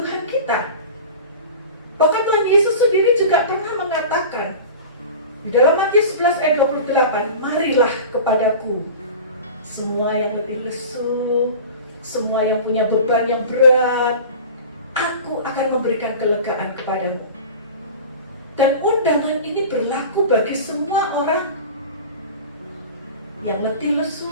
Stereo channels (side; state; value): both; inverted; correlation -0.36